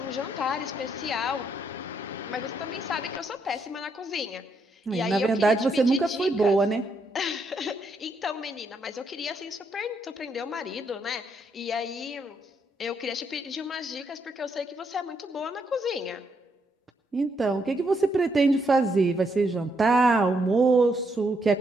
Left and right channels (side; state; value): both; normal; correlation 0.76